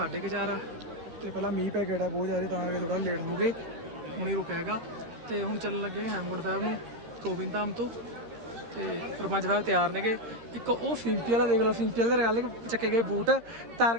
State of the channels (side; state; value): left; late; 13 ms